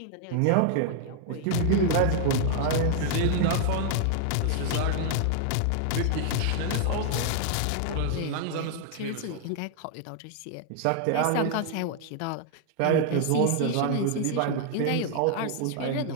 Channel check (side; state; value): both; different; correlation 0.00